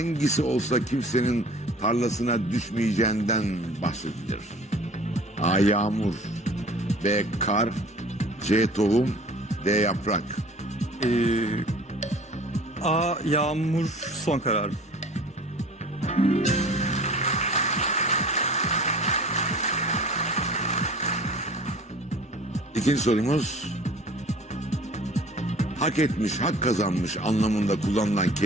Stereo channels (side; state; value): both; normal; correlation 0.46